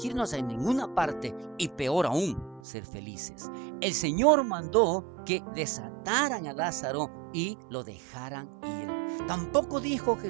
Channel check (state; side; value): drops out; left; at 2.6 s